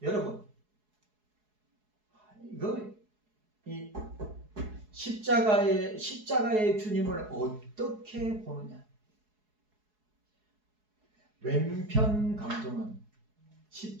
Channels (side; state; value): left; late; 4.7 ms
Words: 여러분, 이 십자가의 주님을 어떻게 보느냐? 왼편 강도는